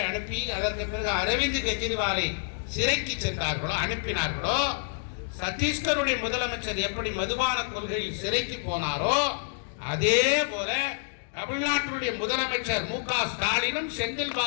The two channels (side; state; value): right; silent; digital silence